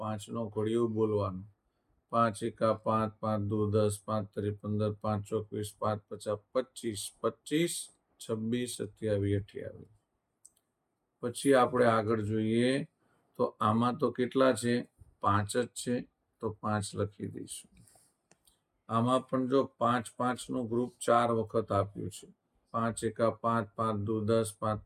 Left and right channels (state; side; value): identical; both; correlation 1.00